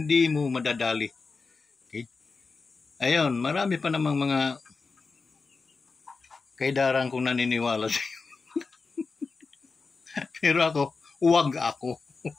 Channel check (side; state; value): right; quieter; 4.4 dB